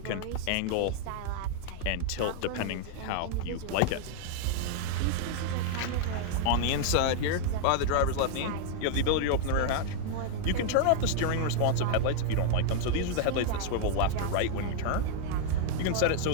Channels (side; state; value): both; different; correlation 0.00